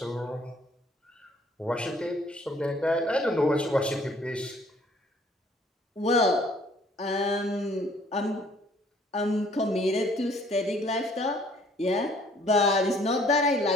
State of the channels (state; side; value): normal; both; correlation 0.59